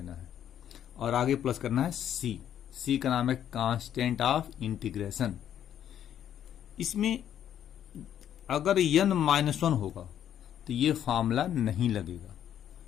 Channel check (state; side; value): quieter; right; 10.2 dB